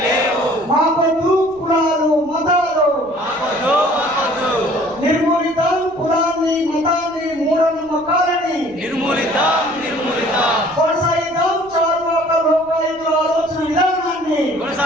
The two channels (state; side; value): noise; right; rumble, 27 dB below the sound